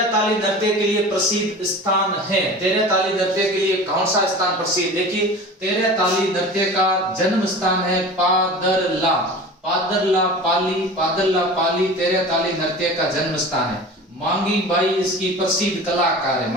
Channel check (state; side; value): normal; both; correlation 0.36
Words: ताली नृत्य के लिए प्रसिद्ध स्थान है। तेरह ताली नृत्य के लिए कौन सा स्थान प्रसिद्ध? देखिए, तेरह ताली नृत्य का जन्म स्थान है पादरला। पादरला पाली तेरह ताली नृत्य का जन्म स्थान है। मांगी बाई इसकी प्रसिद्ध कलाकार है।